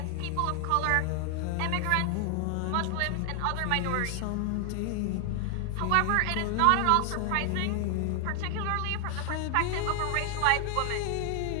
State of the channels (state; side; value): different; both; correlation 0.00